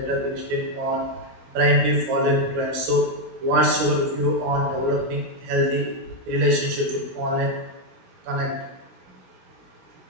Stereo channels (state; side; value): late; left; 17 ms